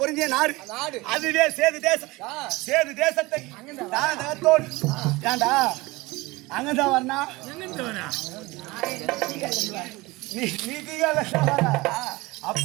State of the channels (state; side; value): quieter; left; 21.9 dB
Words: பொருந்திய நாடு அதுவே சேது தேசம் சேது தேசத்தை தானத்தோடு ஏண்டா அங்கதான் வரணா